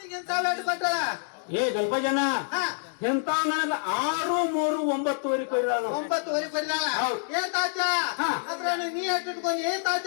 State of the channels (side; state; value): right; silent; 60 dB below the other